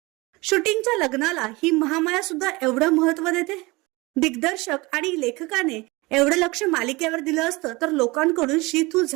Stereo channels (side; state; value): left; quieter; 23.5 dB